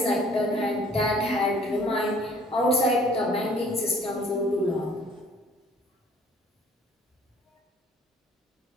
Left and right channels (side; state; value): both; normal; correlation 0.55